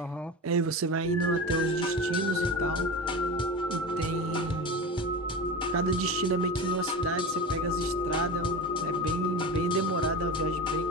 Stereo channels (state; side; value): normal; both; correlation 0.28